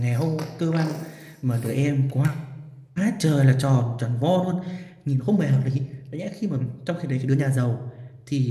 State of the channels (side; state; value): both; identical; correlation 1.00